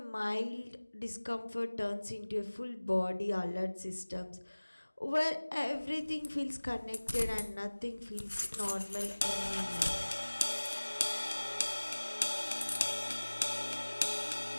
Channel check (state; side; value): inverted; both; correlation -1.00